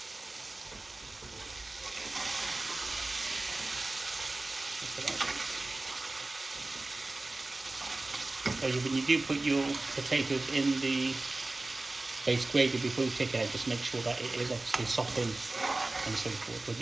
So when you do put your potatoes in the base gravy before you take it out, just make sure that it is obviously softened and so forth. But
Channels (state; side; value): quieter; left; 3.0 dB